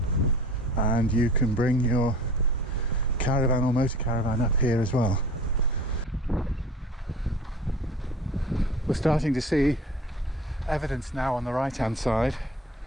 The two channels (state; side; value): normal; both; correlation 0.43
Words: and you can bring your caravan or motor caravan up here as well. We're starting to see evidence now on the right hand side